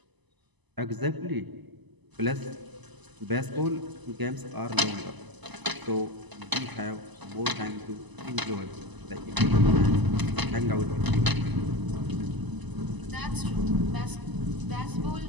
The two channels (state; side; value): late; left; 1.0 ms